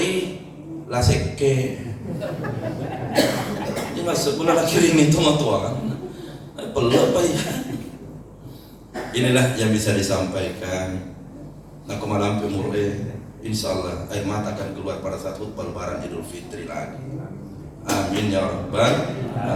laseke. Ini masuk pula kirim itu matuan. Peluk apa ya? Inilah yang bisa disampaikan. Nah malam pemurle, insyaallah air mata akan keluar pada saat khutbah Lebaran Idul Fitri lagi. Amin ya rabbal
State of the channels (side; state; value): both; identical; correlation 1.00